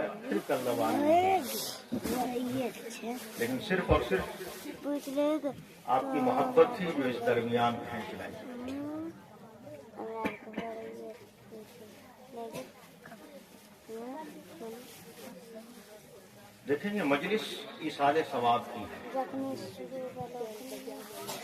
پھر کل روانہ. لیکن صرف اور صرف آپ کی محبت تھی جو اس درمیان کھینچ لائی. دیکھیں یہ مجلس ایصال ثواب کی ہے.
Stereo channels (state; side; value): identical; both; correlation 1.00